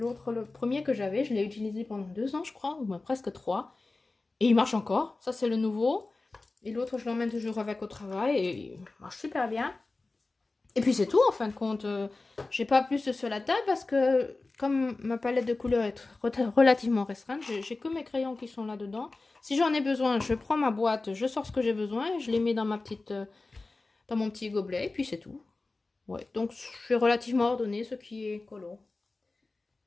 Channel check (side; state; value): right; quieter; 3.4 dB